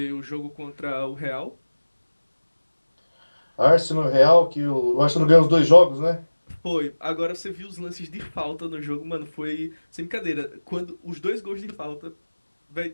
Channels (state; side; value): inverted; both; correlation -1.00